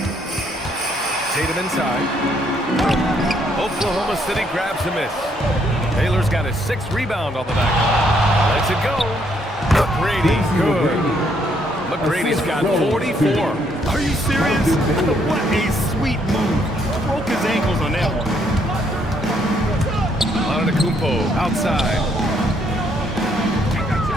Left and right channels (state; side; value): normal; both; correlation 0.70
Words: Tatum inside. Oklahoma City grabs a miss. Taylor's got his 6th rebound on the night. Lets it go. McGrady, good. McGrady's got 44. Are you serious? What a sweet move. Broke his ankles on that one. Antetokounmpo outside.